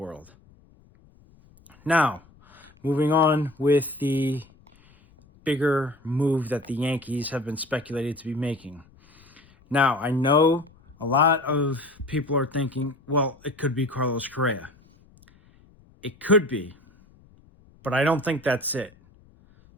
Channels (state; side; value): noise; left; rumble, 28 dB below the sound